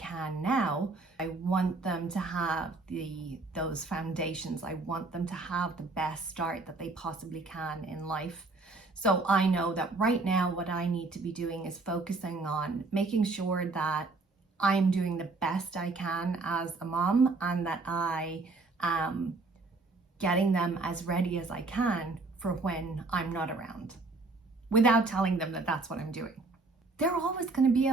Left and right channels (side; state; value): left; quieter; 3.6 dB